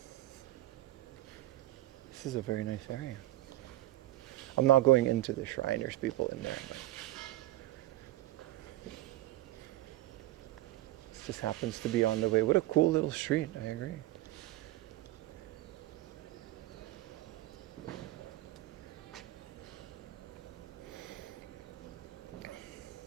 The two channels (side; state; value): left; quieter; 16.0 dB